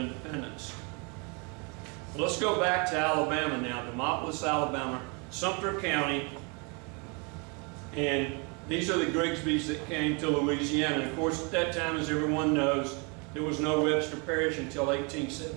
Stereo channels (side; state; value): left; quieter; 32.6 dB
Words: Well, let's go back to Alabama now, Demopolis, Alabama, Sumter County. And these are the Grigsbys that came to Louisiana. And of course, at that time, as everyone knows, there was no Webster Parish until